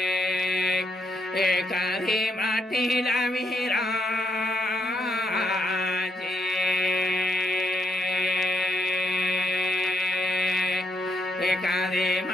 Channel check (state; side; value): normal; both; correlation 0.76